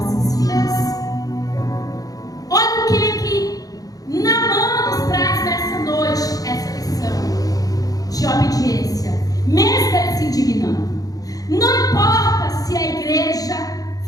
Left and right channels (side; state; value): right; late; 0.18 ms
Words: vidas. Olha o que Naamã nos traz nessa noite, essa lição de obediência, mesmo ele se indignando. Não importa se a igreja